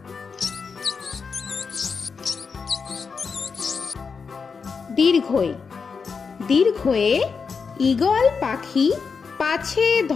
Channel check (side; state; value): right; quieter; 5.4 dB